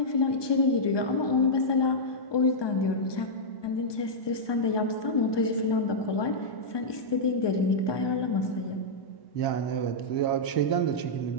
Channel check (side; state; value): right; late; 1.2 ms